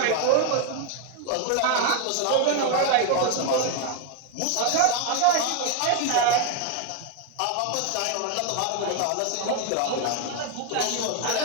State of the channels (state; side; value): different; both; correlation 0.01